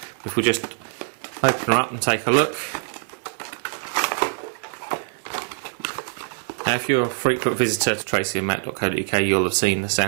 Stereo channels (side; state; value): left; silent; 63 dB below the other